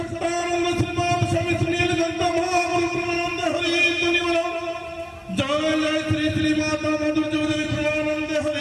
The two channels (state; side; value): identical; both; correlation 1.00